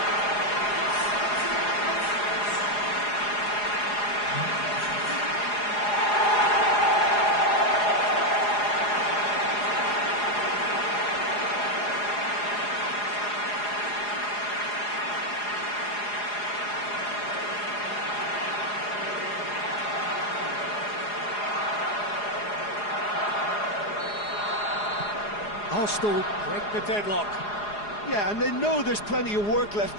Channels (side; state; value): right; late; 4.8 ms